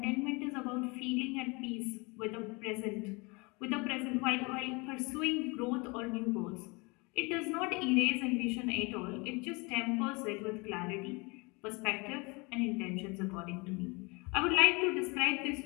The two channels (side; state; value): right; quieter; 27.9 dB